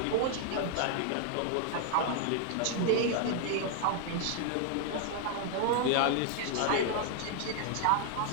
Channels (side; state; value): both; different; correlation 0.00